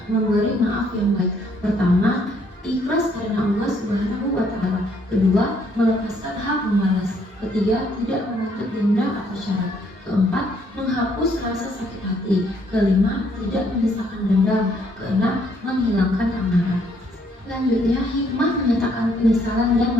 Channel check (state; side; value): normal; both; correlation 0.68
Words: memberi maaf yang baik. Pertama, ikhlas karena Allah Subhanahu wa Ta'ala. Kedua, melepaskan hak membalas. Ketiga, tidak menuntut denda atau syarat. Keempat, menghapus rasa sakit hati. Kelima, tidak menyisakan dendam. Keenam, menghilangkan amarah. Selanjutnya, hikmah menyatakan penyesalan dan